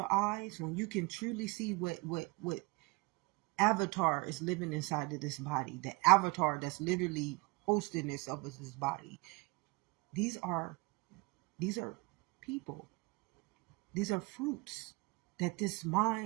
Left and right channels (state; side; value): quieter; left; 26.5 dB